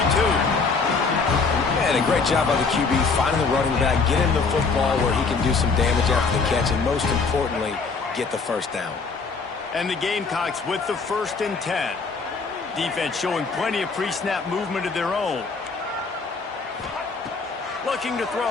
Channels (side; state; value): right; quieter; 4.6 dB